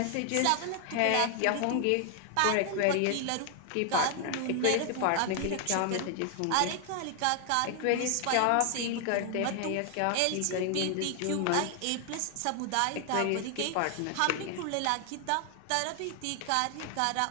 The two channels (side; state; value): both; different; correlation 0.00